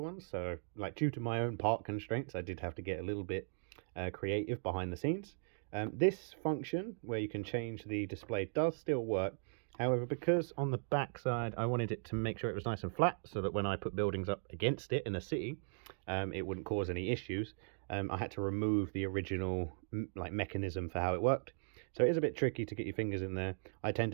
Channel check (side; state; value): left; silent; digital silence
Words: so due to my own part constraints, I did have to get a little bit creative behind the scenes. This function where you can change the display does still work. However, because on the back side I wanted it to make sure it was nice and flat so that when I put buildings up against it in a city, it wouldn't cause any issues. I had to remove the original mechanism for how it worked. So it is a bit tricky to get your fingers in there. I tend